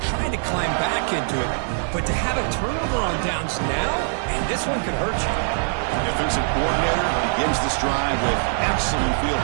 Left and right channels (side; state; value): left; silent; digital silence